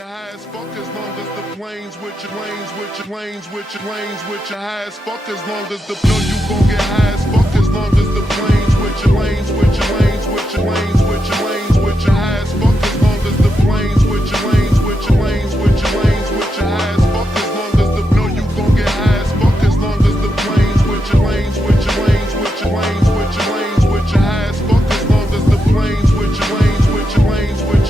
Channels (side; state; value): both; normal; correlation 0.85